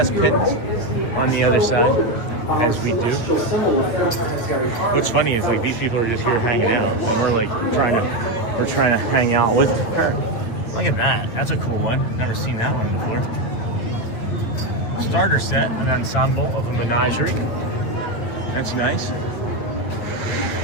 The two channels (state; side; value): late; right; 9.1 ms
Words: pins on the other side, as we do. What's funny is like these people are just here hanging out, and we're like trying to hang out with them. Look at that. That's a cool one. Never seen that one before. Starter set, an ensemble of a menagerie. That's nice.